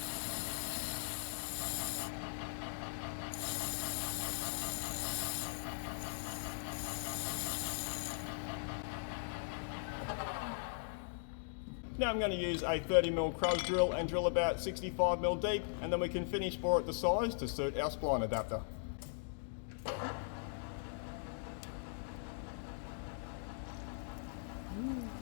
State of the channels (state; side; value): silent; right; digital silence